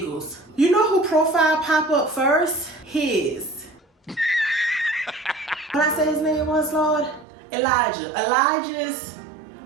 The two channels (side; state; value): left; drops out; at 7.2 s